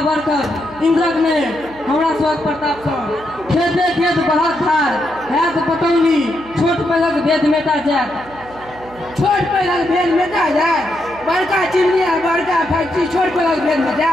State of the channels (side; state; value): right; noise; hum, 21 dB below the sound